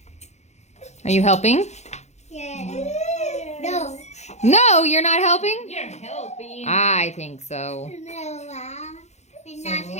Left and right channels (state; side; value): late; right; 0.33 ms